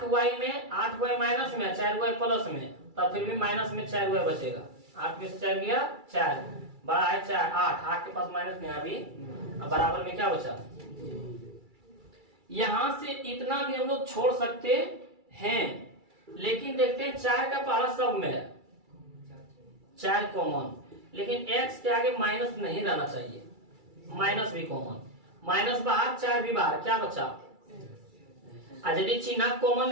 में 8y माइनस में 4y प्लस में, तब फिर भी माइनस में 4y बचेगा, 8 में से 4 गया 4, बड़ा है 4 8 के पास माइनस में अभी, अब बराबर में क्या बचा, यहां से इतना भी हम लोग छोड़ सकते हैं, लेकिन देखते हैं 4 का पहाड़ा सब में है, 4 कॉमन, लेकिन x के आगे माइनस नहीं रहना चाहिए, माइनस भी कॉमन, माइनस बाहर 4 भी बाहर, क्या बचा, यदि चिन्ह कॉमन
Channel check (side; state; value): left; late; 2.3 ms